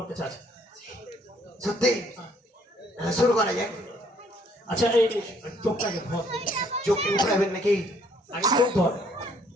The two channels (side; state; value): both; normal; correlation 0.64